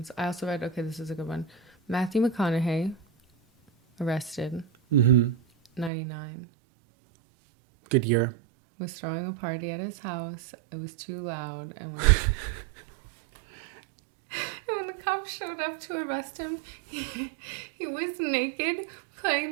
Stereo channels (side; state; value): left; drops out; at 5.9 s